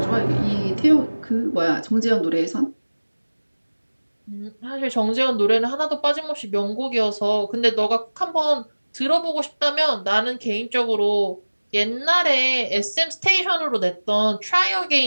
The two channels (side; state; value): both; inverted; correlation -1.00